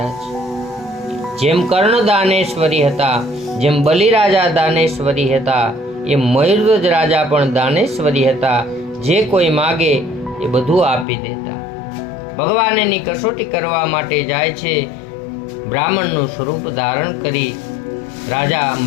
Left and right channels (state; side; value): drops out; right; at 11.1 s